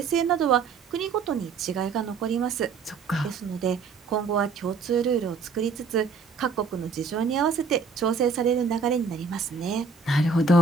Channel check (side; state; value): left; quieter; 5.0 dB